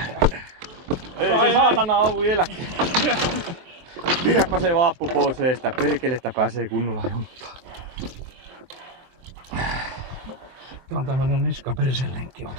Ei se saatana oo vieläkin. Pidäpä se vaappu pois eestä, perkelettä pääsee kunnolla junttaan. Tää on tämmönen niskapersenlenkki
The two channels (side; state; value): left; late; 23 ms